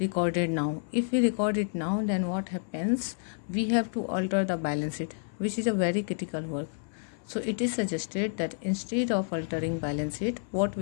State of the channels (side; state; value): right; silent; 58 dB below the other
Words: now. If we record it now, then what happens? We have to alter the balance sheet, which is a very critical work. So it is suggested that instead of altering balance sheet, what